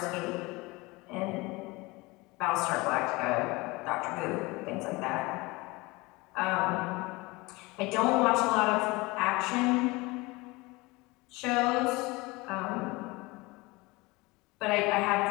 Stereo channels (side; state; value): right; quieter; 23.4 dB